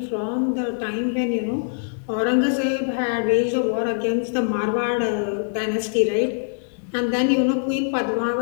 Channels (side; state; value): right; silent; digital silence